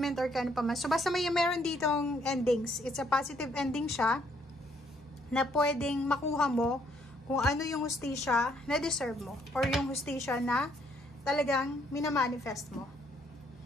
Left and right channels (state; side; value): normal; both; correlation 0.68